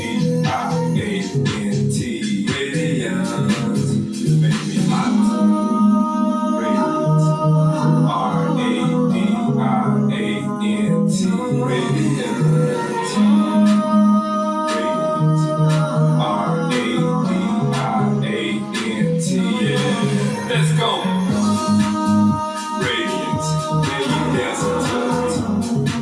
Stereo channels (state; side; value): identical; both; correlation 1.00